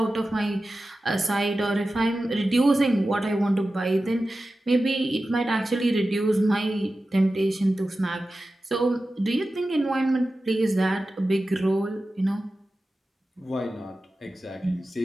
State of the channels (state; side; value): normal; both; correlation 0.94